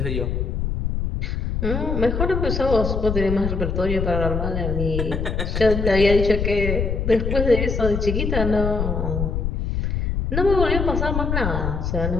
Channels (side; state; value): left; noise; rumble, 1 dB below the sound